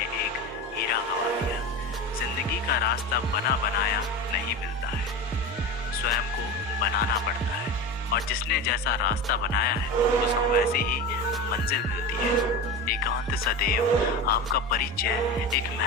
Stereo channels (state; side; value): normal; both; correlation 0.26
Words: एक हीरा गवा दिया। जिंदगी का रास्ता बना बनाया नहीं मिलता है, स्वयं को बनाना पड़ता है, और जिसने जैसा रास्ता बनाया है उसको वैसे ही मंजिल मिलती है। एकांत सदैव आपका परिचय एक